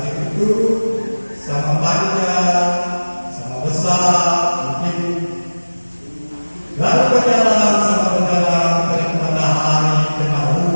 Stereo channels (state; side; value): inverted; both; correlation -1.00